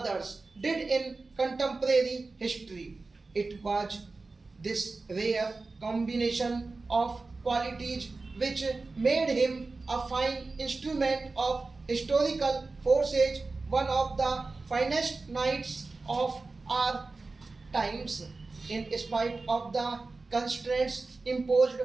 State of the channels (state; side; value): quieter; left; 3.7 dB